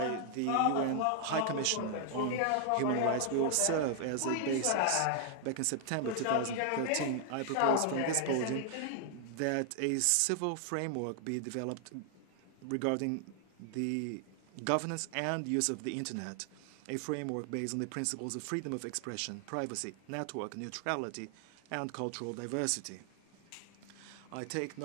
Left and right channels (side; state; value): both; different; correlation 0.00